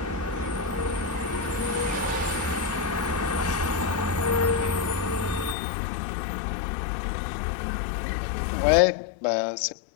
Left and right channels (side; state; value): right; drops out; at 5.6 s